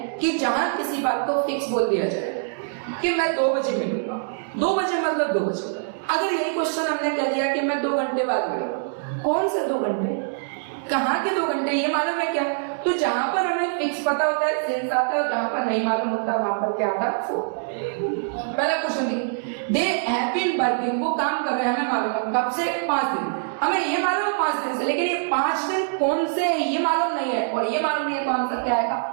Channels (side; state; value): left; silent; digital silence